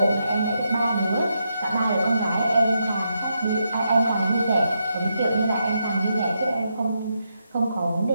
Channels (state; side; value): inverted; both; correlation -0.82